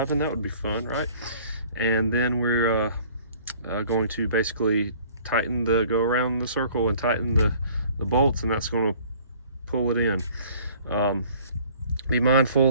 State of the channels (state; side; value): inverted; both; correlation -0.54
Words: That would be fun, right? And then we're going to basically go around the circle and tighten the bolts, and that's going to pull it in. Be